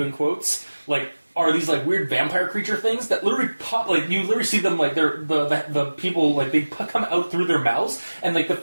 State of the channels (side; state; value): both; inverted; correlation -1.00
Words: in quotes, like, are these like weird vampire creature things that literally pop, like you literally see them like they're the people like they come out through their mouths, and like